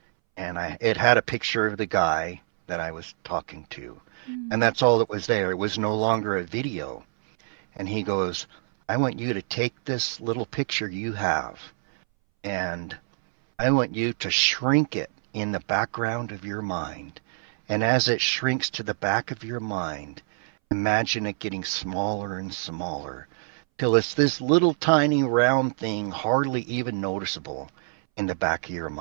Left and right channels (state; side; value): silent; left; 61 dB below the other